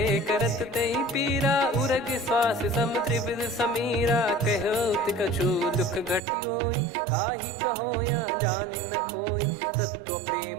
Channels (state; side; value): drops out; left; at 6.2 s